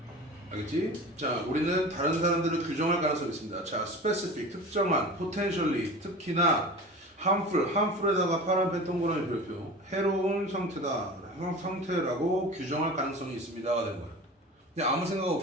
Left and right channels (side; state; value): both; normal; correlation 0.35